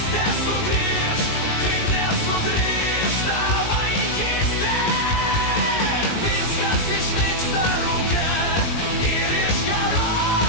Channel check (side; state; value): right; late; 19 ms